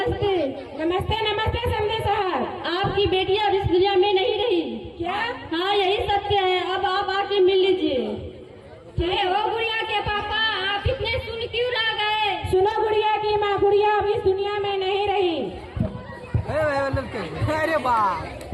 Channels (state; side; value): identical; both; correlation 1.00